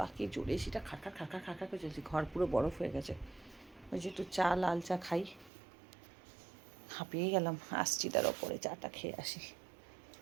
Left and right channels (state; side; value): drops out; left; at 5.5 s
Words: কি জোরে সেটা খাকা খাকা খাকা করে চলছে, ঘর পুরো বরফ হয়ে গেছে। ওই যে একটু চা, লাল চা খাই, হাঁপিয়ে গেলাম। আসছি তার ওপরে চাটা খেয়ে আসি।